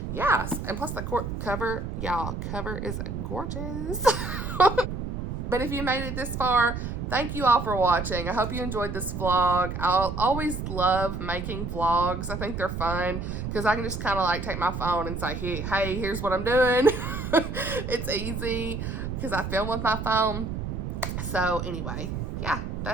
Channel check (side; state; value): right; noise; rumble, 5 dB below the sound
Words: yes, and plus the cover, y'all, cover is gorgeous. But if you made it this far, thank you all for watching. I hope you enjoyed this vlog. I'll always love making vlogs. I think they're fun because I can just kind of like take my phone and say, hey, here's what I'm doing. It's easy because I film with my phone. So anyway, yeah,